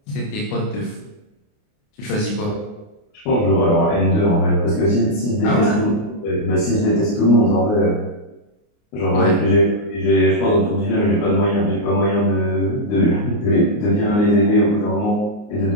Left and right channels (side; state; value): right; late; 29 ms